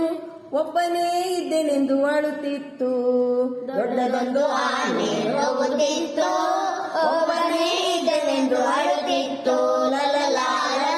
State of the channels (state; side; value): identical; both; correlation 1.00